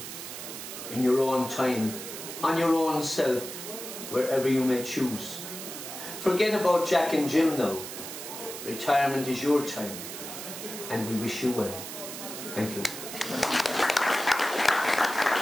in your own time, on your own self, wherever you may choose. Forget about Jack and Jill now. Retirement is your time, and we wish you well. Thank you.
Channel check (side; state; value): right; noise; hiss, 9 dB below the sound